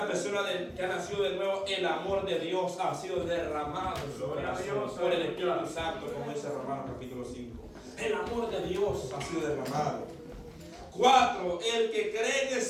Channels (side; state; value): both; identical; correlation 1.00